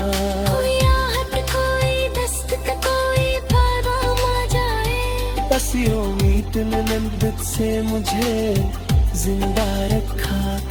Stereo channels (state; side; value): identical; both; correlation 1.00